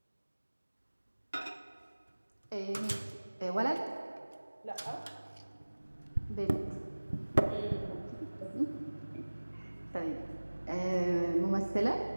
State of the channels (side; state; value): both; inverted; correlation -1.00